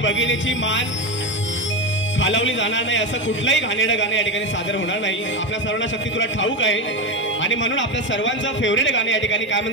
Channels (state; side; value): normal; both; correlation 0.16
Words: मान खालावली जाणार नाही असं कुठलंही घाणेरडं गाणं या ठिकाणी सादर होणार नाही आपल्या सर्वांना शक्ती तुला ठाऊक आहे आणि म्हणून आपल्या सर्वांचं फेवरेट गाणं या ठिकाणी काय